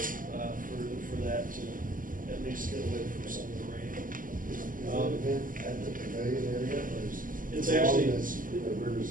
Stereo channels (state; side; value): late; left; 0.40 ms